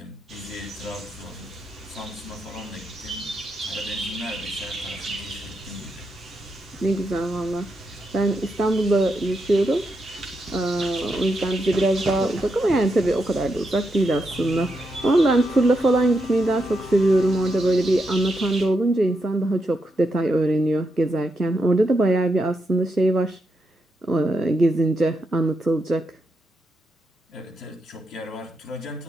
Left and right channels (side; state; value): both; normal; correlation 0.83